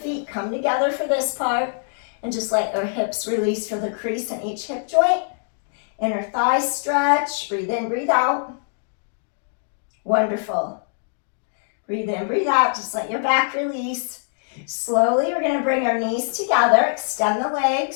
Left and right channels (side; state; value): right; silent; digital silence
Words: come together for this part. And just let your hips release for the crease in each hip joint. Inner thighs stretch. Breathe in, breathe out. Wonderful. Breathe in, breathe out. Just let your back release. Slowly, we're going to bring our knees together. Extend the